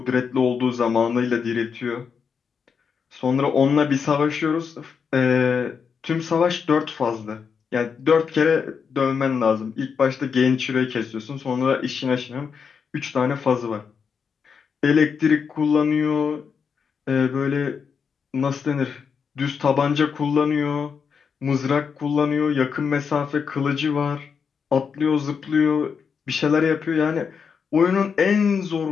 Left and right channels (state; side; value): quieter; right; 6.2 dB